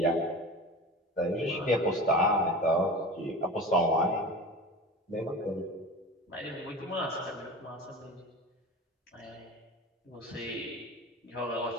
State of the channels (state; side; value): normal; both; correlation 0.33